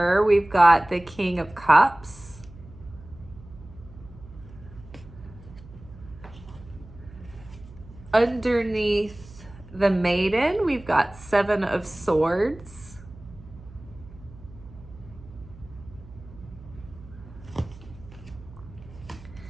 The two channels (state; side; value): noise; right; hum, 19 dB below the sound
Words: we've got the King of Cups. Underneath the maiden, we've got Seven of Swords.